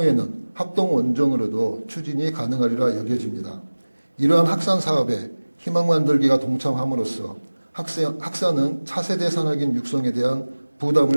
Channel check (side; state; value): both; inverted; correlation -1.00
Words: 합동 원정으로도 추진이 가능하리라 여겨집니다. 이러한 학산 사업에 희망만들기가 동참함으로써 학산은 차세대 산학인 육성에 대한